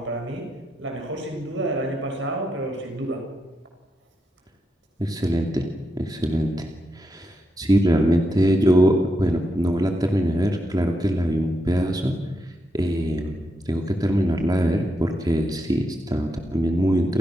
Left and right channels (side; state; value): both; normal; correlation 0.83